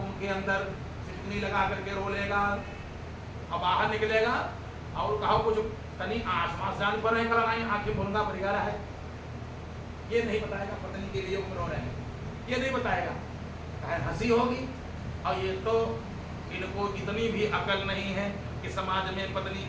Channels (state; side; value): identical; both; correlation 1.00